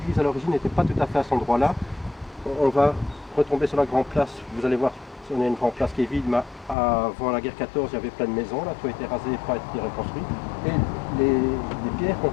à l'origine n'était pas tout à fait à cet endroit-là. On va retomber sur la grande place. Vous allez voir, on a une grande place qui est vide, mais avant la guerre 14, il y avait plein de maisons. Là, tout a été rasé et pas été reconstruit. Et les pierres qu'on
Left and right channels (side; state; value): right; drops out; at 6.8 s